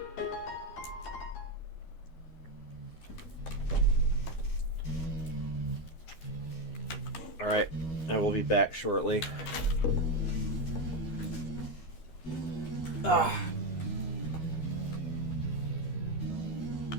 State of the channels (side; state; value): right; late; 13 ms